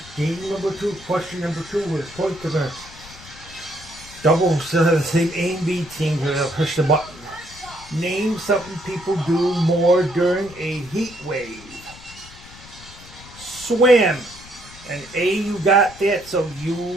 game number 2, question number 2, where the points are going to double instead of the same A and B team. We're going to push the button. Name something people do more during a heat wave. Swim. And A, you got that, so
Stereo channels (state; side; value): noise; left; rumble, 19 dB below the sound